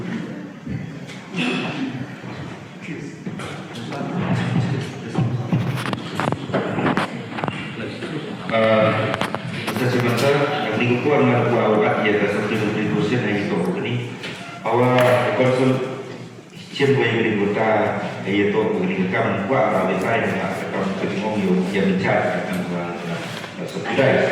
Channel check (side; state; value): both; identical; correlation 1.00